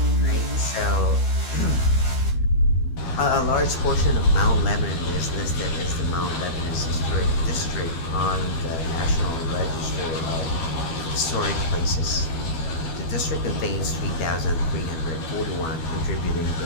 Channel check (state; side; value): late; right; 12 ms